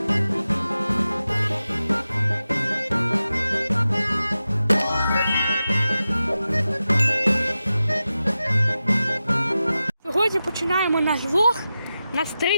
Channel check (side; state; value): both; inverted; correlation -0.93